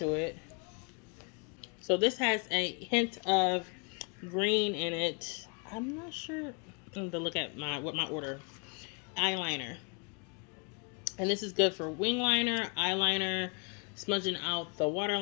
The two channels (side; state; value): right; quieter; 35.7 dB